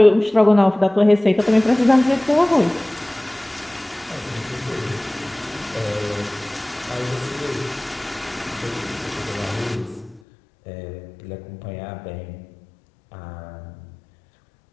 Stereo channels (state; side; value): drops out; right; at 10.2 s